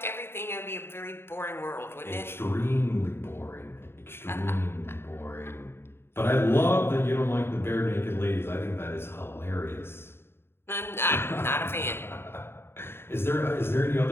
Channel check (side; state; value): right; late; 0.11 ms